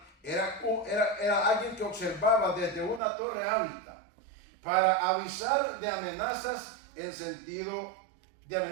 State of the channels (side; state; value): left; drops out; at 3.0 s